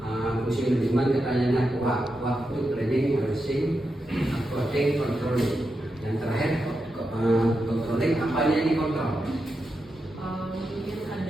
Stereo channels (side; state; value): both; normal; correlation 0.87